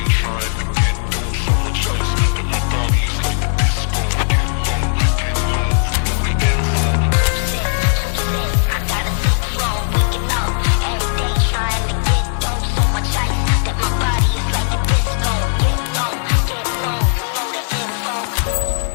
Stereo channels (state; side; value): silent; right; 68 dB below the other